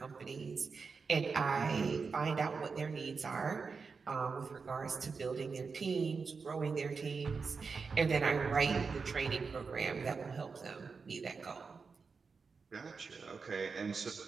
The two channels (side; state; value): left; quieter; 5.0 dB